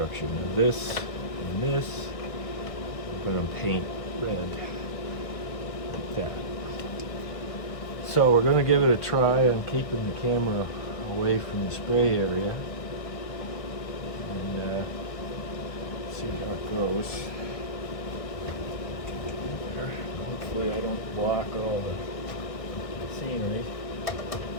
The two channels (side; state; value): right; late; 1.4 ms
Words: Now this and this we're going to paint red like that. So we're going to give it a try. I'm keeping the camera away from the spray area and see how it goes. There. Hopefully I don't block all the scenery.